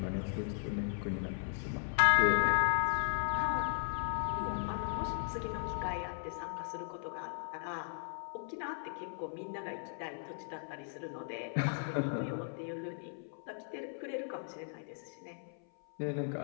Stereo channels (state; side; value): silent; right; 53 dB below the other